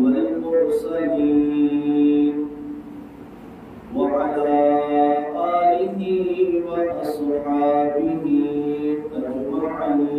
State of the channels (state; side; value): identical; both; correlation 1.00